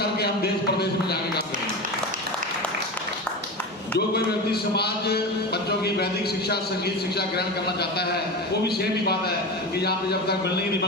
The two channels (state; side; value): normal; both; correlation 0.26